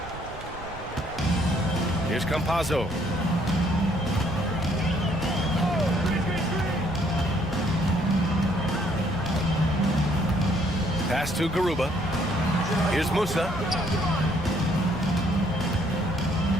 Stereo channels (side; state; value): right; noise; rumble, 15 dB below the sound